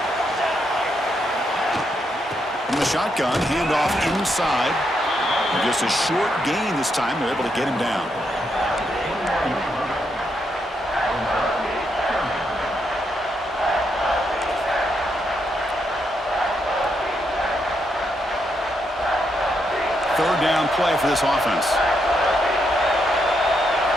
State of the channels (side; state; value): both; normal; correlation 0.79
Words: From the shotgun, handoff inside. And just a short gain this time. They're able to get him down. Third down play for this offense.